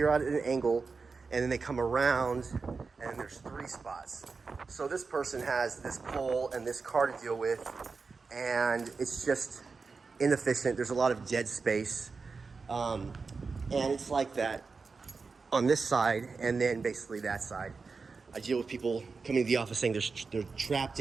at an angle, and then they come around and there's 3 spots. So this person has this pole and this car to deal with, and it's just inefficient. There's a lot of dead space, and it's like that on this side, and then basically that side. I deal with people coming to the office saying they're trapped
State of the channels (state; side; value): quieter; left; 4.6 dB